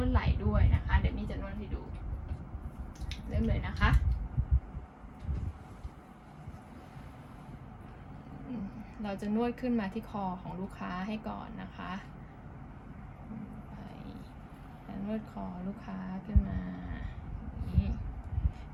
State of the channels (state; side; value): identical; both; correlation 1.00